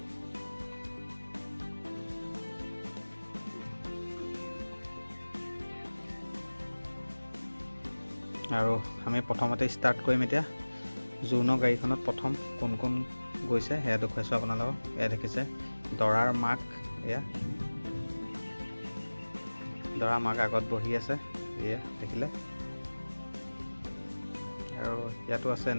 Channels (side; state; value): both; inverted; correlation -1.00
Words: আৰু আমি প্ৰথমতে ষ্টাৰ্ট কৰিম এতিয়া। জোৰোণৰ গাড়ীখনত প্ৰথম কোন কোন গৈছে সেয়া দেখুৱাইছোঁ আপোনালোকক। এয়া দেখিছে দৰাৰ মাক, এয়া দৰা মাক আগত বহি আছে, এয়া দেখিলে। আৰু ইয়াতো আছে